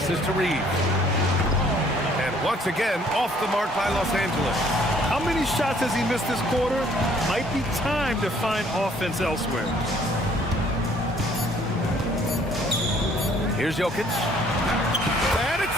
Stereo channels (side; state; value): both; normal; correlation 0.60